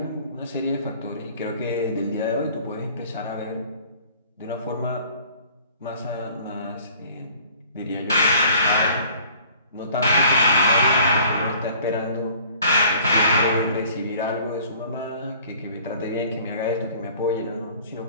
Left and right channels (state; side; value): inverted; both; correlation -0.52